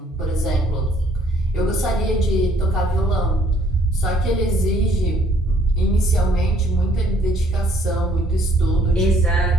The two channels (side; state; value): both; normal; correlation 0.63